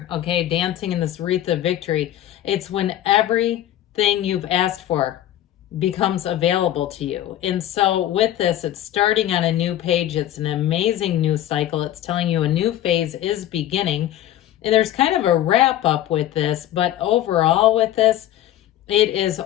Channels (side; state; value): right; quieter; 12.6 dB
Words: okay, dancing in this wreath of victory, it's when everything you've asked for becomes available to you. And so with this, it's starting on a new page. It's an amazing new cycle. It's telling you a new phase is beginning. And there's kind of a wrap up with this, but overall with this, it is